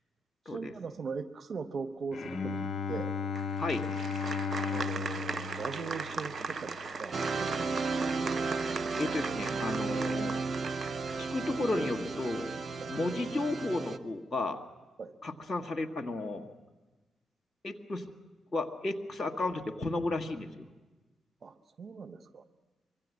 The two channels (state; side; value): normal; both; correlation 0.79